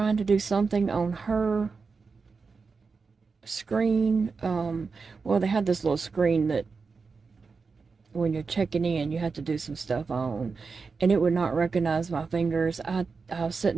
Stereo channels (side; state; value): left; quieter; 4.8 dB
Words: to do something on her screen, well, they had this little screen that when you're checking in you have to do some stuff on, and it would not recognize my fingers. I was sitting